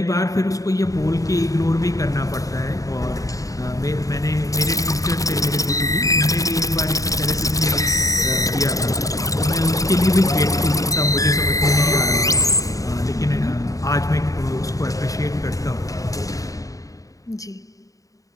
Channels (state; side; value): late; right; 0.16 ms